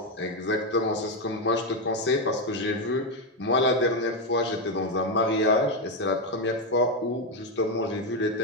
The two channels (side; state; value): both; normal; correlation 0.06